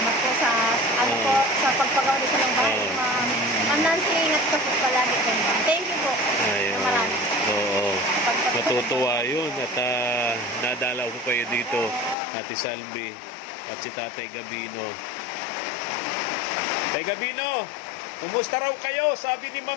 po sa sa pagpagawa dito ng bahay, ma'am. Ma'am Nancy, ingat ka po palagi kayo, ma'am. Thank you po. Ayun. Marami. Natutuwa yun at nadalaw ko kayo dito, Ate Salvi at si Tatay Gabino. Tay Gabino, kumusta raw kayo? Sabi ni Ma'am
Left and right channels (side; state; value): right; drops out; at 12.2 s